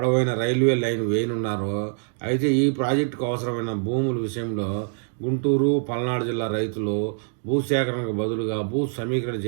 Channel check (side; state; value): left; silent; 56 dB below the other